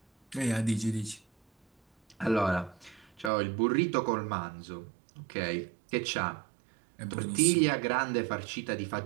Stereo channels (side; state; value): left; drops out; at 3.3 s